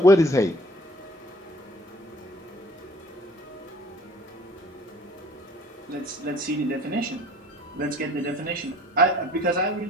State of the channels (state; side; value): normal; both; correlation 0.53